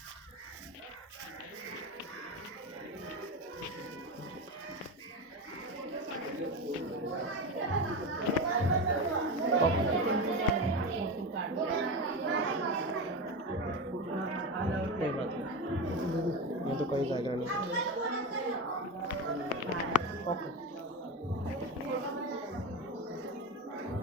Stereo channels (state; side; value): normal; both; correlation 0.21